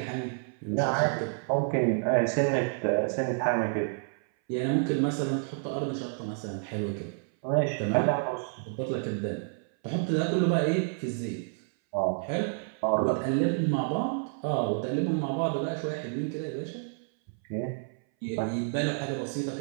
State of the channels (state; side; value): silent; left; 58 dB below the other